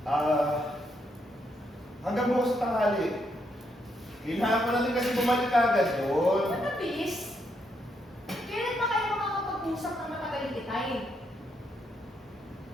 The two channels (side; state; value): both; normal; correlation 0.77